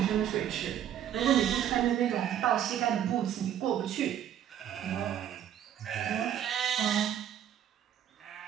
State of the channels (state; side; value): quieter; left; 10.3 dB